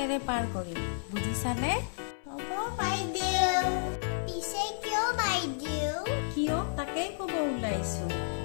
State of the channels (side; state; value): right; silent; 57 dB below the other